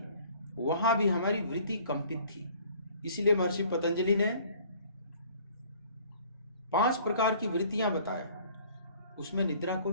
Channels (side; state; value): both; inverted; correlation -0.54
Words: वहां भी हमारी वृत्ति कंपित थी। इसलिए महर्षि पतंजलि ने 5 प्रकार की वृत्तियां बताया, उसमें निद्रा को